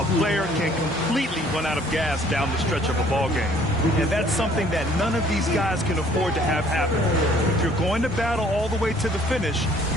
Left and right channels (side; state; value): both; normal; correlation 0.59